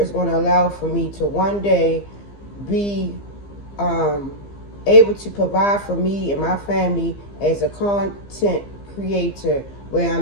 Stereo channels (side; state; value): right; late; 15 ms